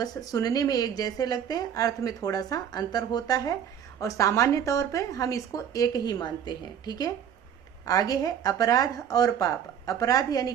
सुनने में एक जैसे लगते हैं, अर्थ में थोड़ा सा अंतर होता है, और सामान्य तौर पे हम इसको एक ही मानते हैं। ठीक है। आगे है अपराध और पाप, अपराध यानी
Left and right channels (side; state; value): left; quieter; 8.8 dB